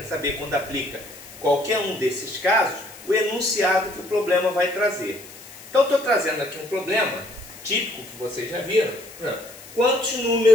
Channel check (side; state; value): left; noise; hiss, 19 dB below the sound